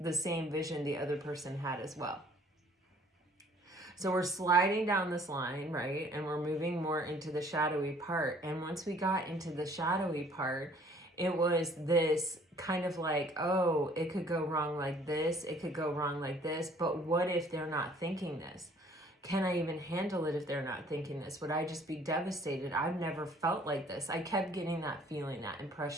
same vision the other person had as well. So we're sliding down this line, right? And we're moving more into the shadowy part. And once we got into the shadowy part, it was this kind of like, oh, it could go wrong like this. It could go wrong like this. But what if they're not thinking this? Can I even handle it if they're not thinking this? Would I just be devastated? I've never felt like this. I kept getting that feeling, that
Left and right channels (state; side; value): normal; both; correlation 0.57